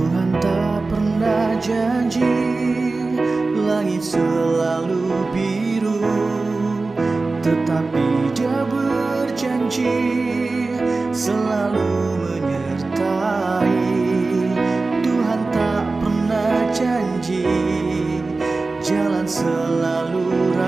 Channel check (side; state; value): left; quieter; 3.6 dB